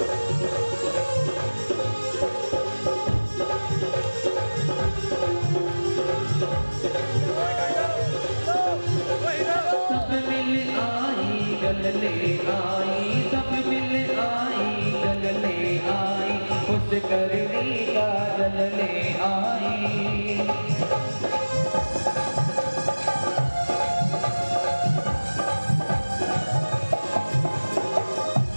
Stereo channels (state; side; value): inverted; both; correlation -1.00